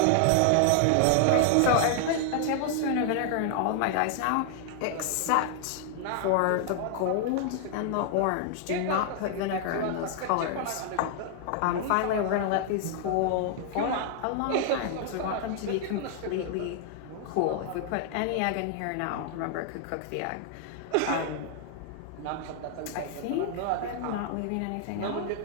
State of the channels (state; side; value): different; both; correlation 0.00